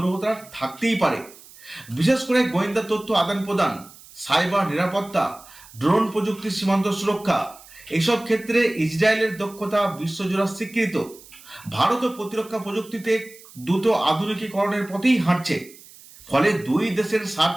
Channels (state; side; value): noise; right; hiss, 21 dB below the sound